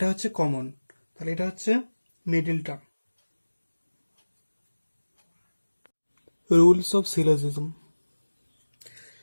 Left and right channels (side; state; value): both; inverted; correlation -1.00